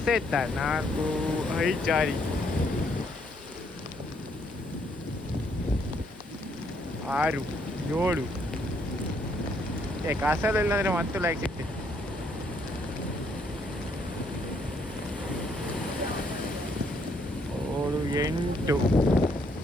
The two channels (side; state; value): both; normal; correlation 0.70